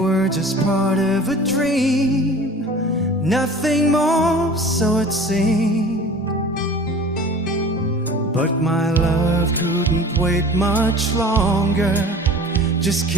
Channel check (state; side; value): normal; both; correlation 0.42